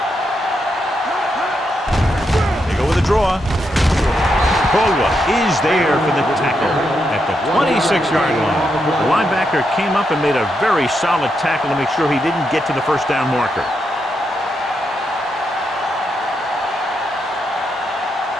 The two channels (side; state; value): both; normal; correlation 0.82